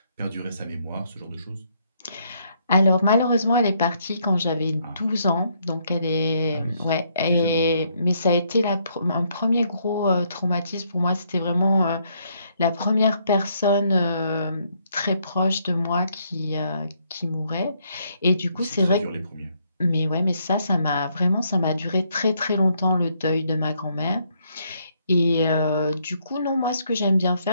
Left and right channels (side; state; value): both; inverted; correlation -0.72